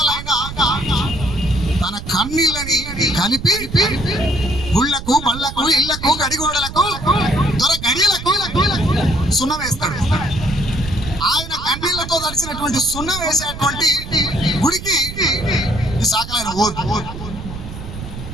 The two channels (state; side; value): noise; right; rumble, 10 dB below the sound